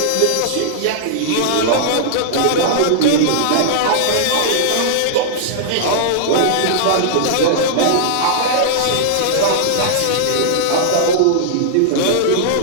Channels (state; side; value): different; both; correlation -0.02